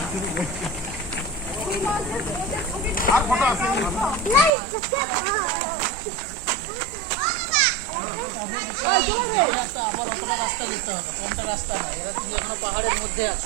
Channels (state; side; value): drops out; left; at 4.5 s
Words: রাস্তা যেতে হবে, কোনটা রাস্তা না, এরা তুমি এখনো পাহাড়ের মধ্যে